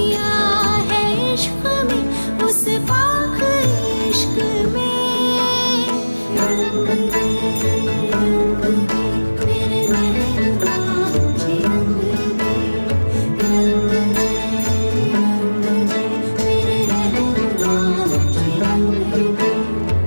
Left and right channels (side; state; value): both; inverted; correlation -1.00